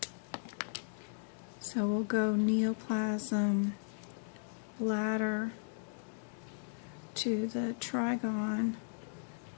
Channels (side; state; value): right; silent; digital silence